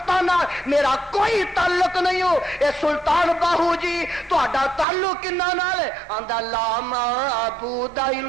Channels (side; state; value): left; drops out; at 4.9 s